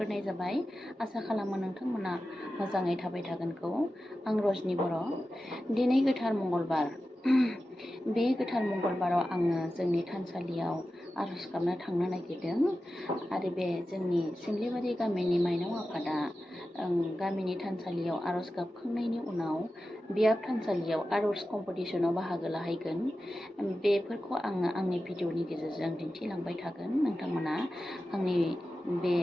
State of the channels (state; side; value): normal; both; correlation 0.93